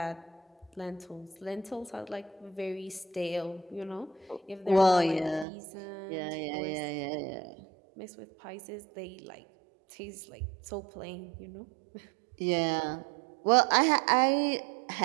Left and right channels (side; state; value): left; drops out; at 5.5 s